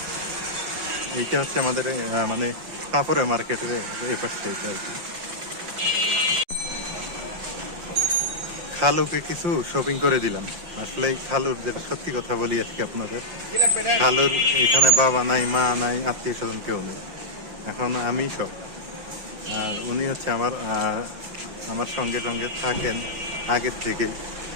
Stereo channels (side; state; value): left; late; 5.7 ms